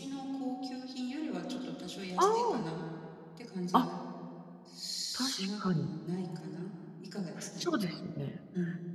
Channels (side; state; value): both; identical; correlation 1.00